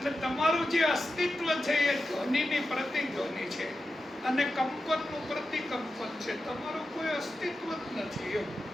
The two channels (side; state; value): both; normal; correlation 0.91